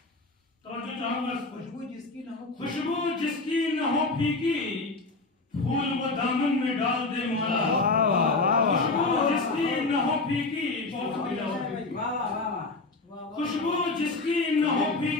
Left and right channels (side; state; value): right; quieter; 3.5 dB